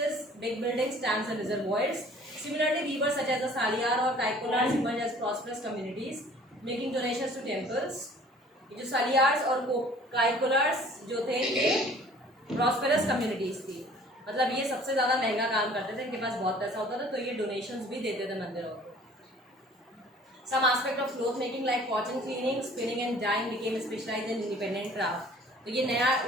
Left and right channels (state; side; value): normal; both; correlation 0.51